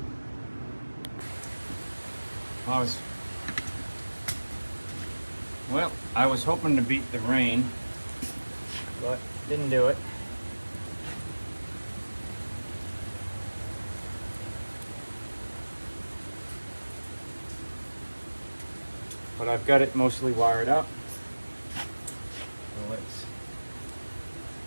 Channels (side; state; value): both; inverted; correlation -1.00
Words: I was hoping to beat the rain, but didn't do it. But I've got it mostly wired up. So let's